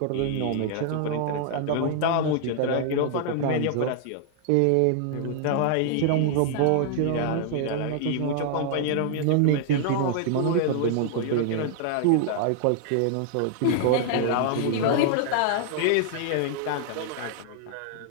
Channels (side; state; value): both; different; correlation -0.01